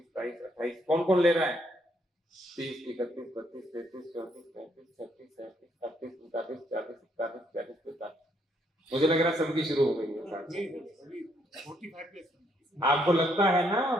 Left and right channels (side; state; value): both; normal; correlation 0.72